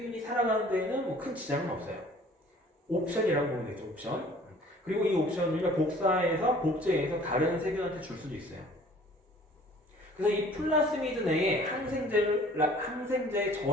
살아가는 데에는 뭐 큰 지장은 없어요. 옵션이라고 보면 되죠. 옵션. 그리고 이 옵션을 복제해서 다른 세균한테 줄 수도 있어요. 그래서 이 플라스미드 내에 항생제의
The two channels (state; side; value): normal; both; correlation 0.52